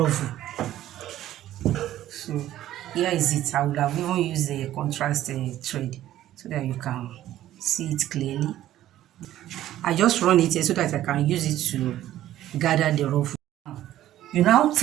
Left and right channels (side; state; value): left; quieter; 13.2 dB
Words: So here is it. I would have even used a contrast thread so that you can see it clearly. I just run it here so that I can use it to gather the ruffle. You now